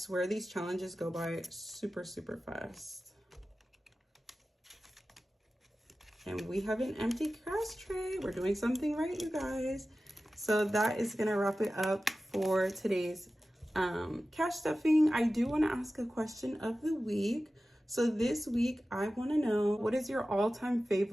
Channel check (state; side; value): normal; both; correlation 0.95